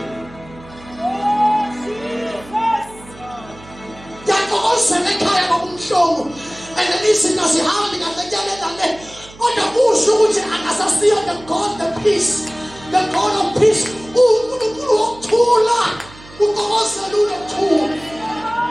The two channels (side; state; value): right; noise; hum, 21 dB below the sound